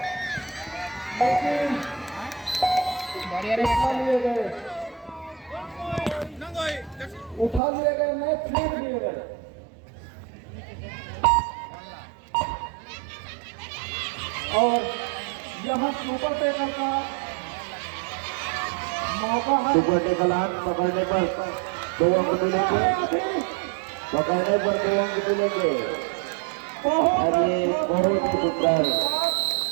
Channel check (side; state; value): left; drops out; at 7.6 s